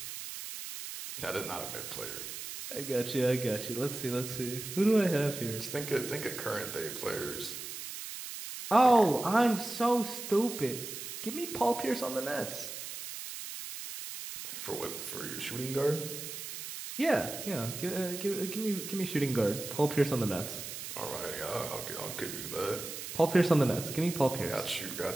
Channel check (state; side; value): noise; right; hiss, 8 dB below the sound